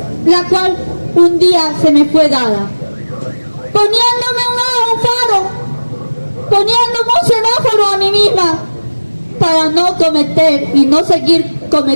la cual un día se me fue dada, poniéndome un faro, poniéndome un semáforo a mí misma, para no cometer y no seguir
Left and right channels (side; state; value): both; inverted; correlation -1.00